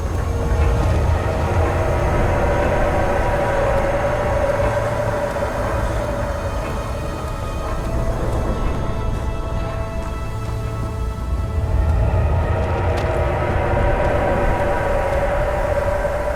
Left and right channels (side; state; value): both; identical; correlation 1.00